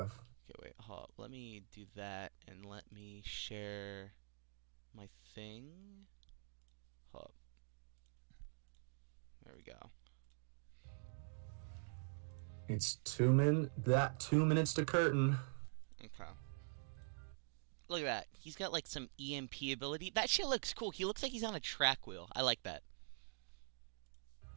Okay, wait, hold up. Let me do that, and let me share my thing. Hold up. There we go. It's 2 minutes to curtain. Okay. Look at that. He's got like some EMP ability. That shit looks cool. He looks like he's on a track wheel. I like that.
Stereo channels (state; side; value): silent; left; digital silence